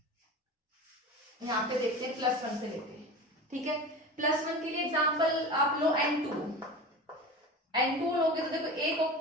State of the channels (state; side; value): normal; both; correlation 0.31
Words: यहाँ पे देखते हैं +1 से लेते हैं, ठीक है। +1 के लिए एग्जांपल आप लो N2 लोगे तो देखो एक ऑक